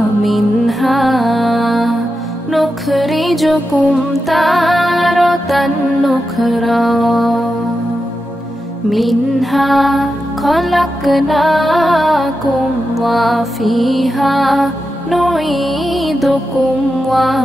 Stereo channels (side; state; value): both; normal; correlation 0.89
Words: মিনহা নুখরিজুকুম তারাতান নুখরা। মিনহা খলাকনাকুম ওয়া ফিহা নুঈদুকুম ওয়া